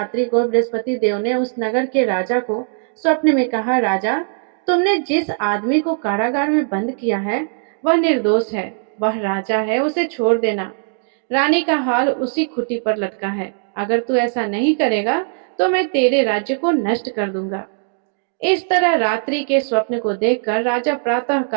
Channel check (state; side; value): silent; left; digital silence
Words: को बृहस्पति देव ने उस नगर के राजा को स्वप्न में कहा, राजा, तुमने जिस आदमी को कारागार में बंद किया है वह निर्दोष है, वह राजा है, उसे छोड़ देना। रानी का हाल उसी खुटी पर लटका है। अगर तू ऐसा नहीं करेगा तो मैं तेरे राज्य को नष्ट कर दूंगा। इस तरह रात्रि के स्वप्न को देखकर राजा प्रातः